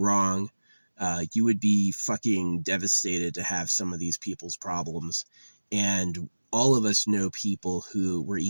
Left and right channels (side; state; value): both; inverted; correlation -1.00